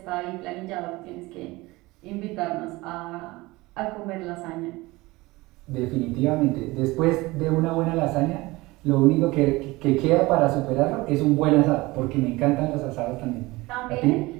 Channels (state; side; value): quieter; left; 21.2 dB